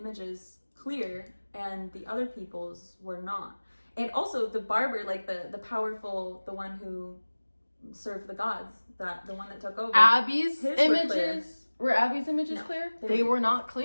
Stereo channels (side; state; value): both; inverted; correlation -1.00